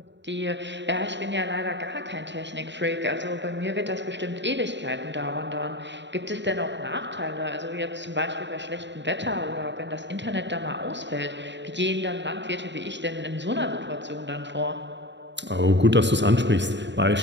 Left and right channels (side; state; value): left; late; 0.52 ms